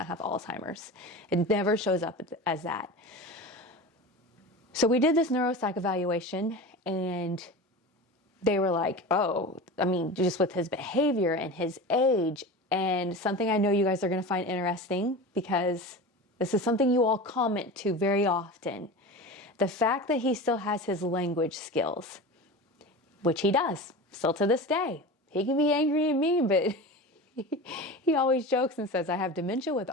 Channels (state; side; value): normal; both; correlation 0.30